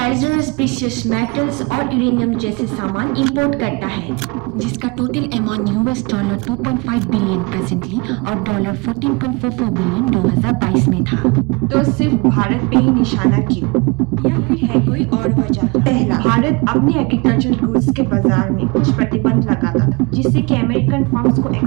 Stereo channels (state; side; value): quieter; left; 28.0 dB